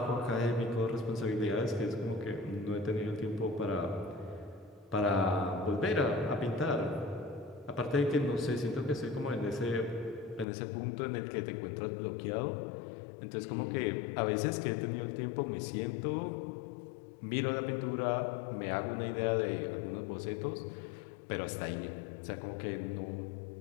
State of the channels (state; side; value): drops out; right; at 10.5 s